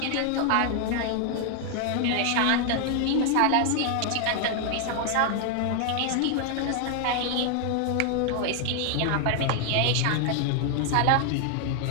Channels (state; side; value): different; both; correlation 0.00